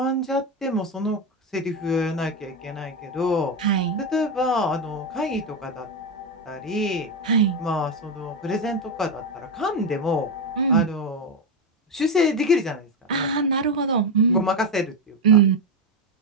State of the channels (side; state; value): both; normal; correlation 0.11